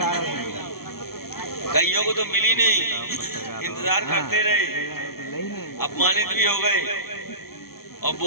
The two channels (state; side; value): late; right; 0.94 ms